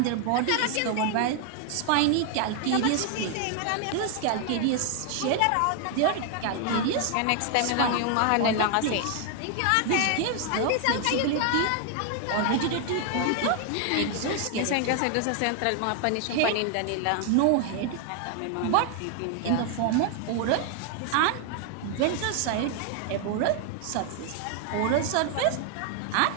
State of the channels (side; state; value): both; different; correlation 0.00